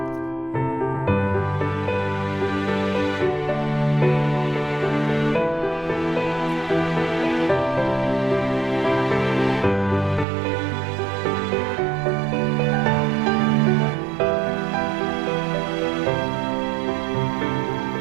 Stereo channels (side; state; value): left; drops out; at 10.2 s